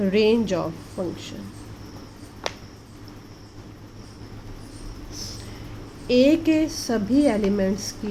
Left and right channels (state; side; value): identical; both; correlation 1.00